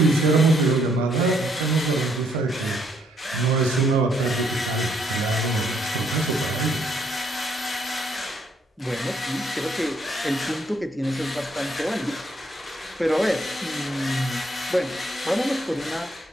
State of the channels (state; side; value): normal; both; correlation 0.70